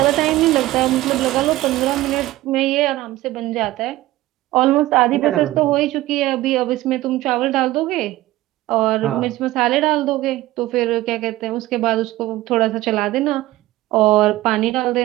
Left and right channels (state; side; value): quieter; left; 16.8 dB